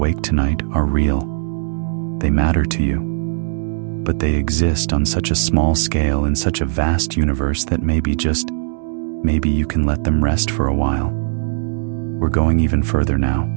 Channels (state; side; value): silent; left; 67 dB below the other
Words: tonight are real. They matter to you, but they exist on such a small scale in such a vast universe that maybe you can let them rest for a while. We're going even further now,